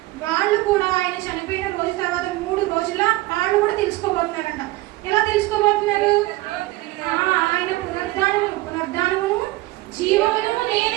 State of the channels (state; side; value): quieter; left; 18.9 dB